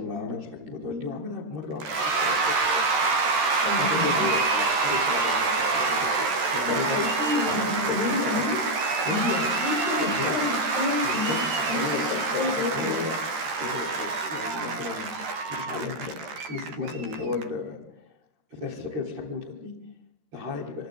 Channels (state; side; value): late; left; 13 ms